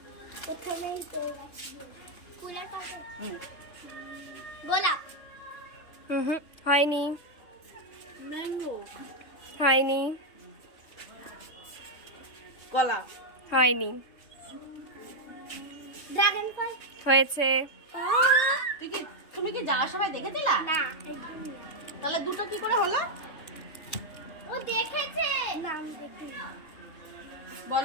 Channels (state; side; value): late; right; 3.2 ms